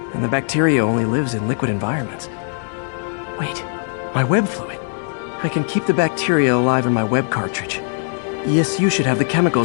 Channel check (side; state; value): right; silent; 66 dB below the other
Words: and the bacteria only lives in liquid environments. Wait, my web fluid. I can keep the bacteria alive in my web cartridge. ESU should have the